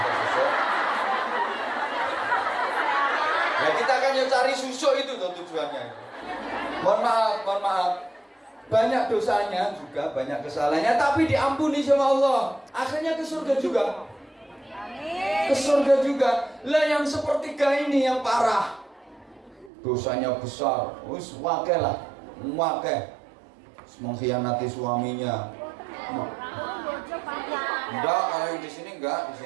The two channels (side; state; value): left; drops out; at 19.7 s